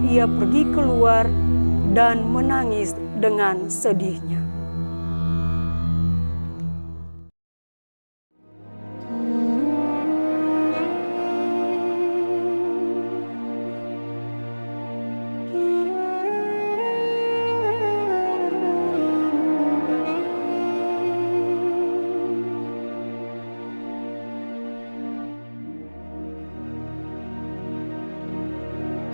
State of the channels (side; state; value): both; inverted; correlation -1.00